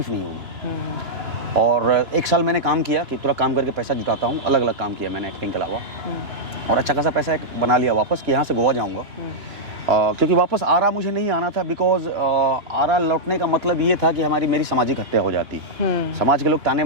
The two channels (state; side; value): late; left; 2.9 ms